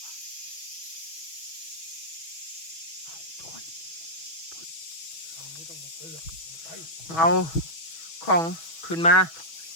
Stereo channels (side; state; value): right; late; 6.1 ms